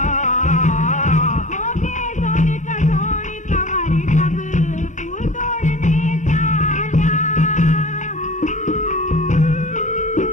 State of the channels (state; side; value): late; right; 0.36 ms